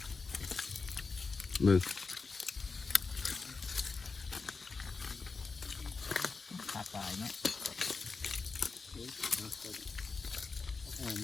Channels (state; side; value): quieter; right; 4.4 dB